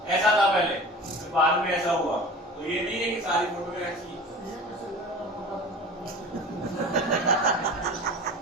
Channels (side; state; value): both; normal; correlation 0.38